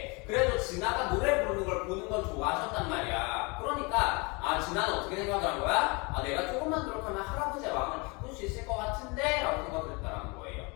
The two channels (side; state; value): right; quieter; 28.7 dB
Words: 그래도 진아가 노래 부르는 걸 보는 건 좋아하셨단 말이야. 그러니까 진아는 어떻게 생각을 한 거야? 내가 조금만 노력하면 할아버지의 마음을 바꿀 수 있을 것 같은데? 라고 생각을 했다는 거예요.